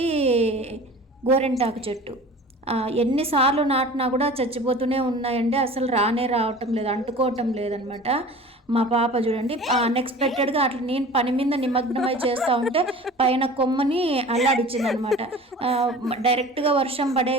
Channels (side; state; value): both; normal; correlation 0.41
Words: గోరెంటాకు చెట్టు. ఎన్నిసార్లు నాటినా కూడా చచ్చిపోతూనే ఉన్నాయండి. అసలు రావటం లేదు, అంటుకోవటం లేదనమాట. మా పాప చూడండి, అన్ఎక్స్పెక్టెడ్గా అట్లా నేను పని మీద నిమగ్నమై చేస్తూ ఉంటే పైన కొమ్మని అల్లాడిచ్చింది అనమాట. డైరెక్ట్గా వర్షం పడే